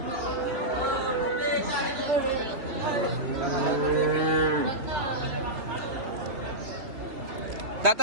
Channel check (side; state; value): left; late; 3.0 ms